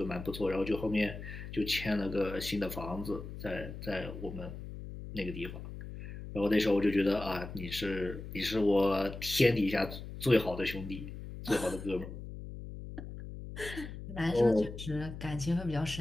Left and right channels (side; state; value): left; noise; hum, 10 dB below the sound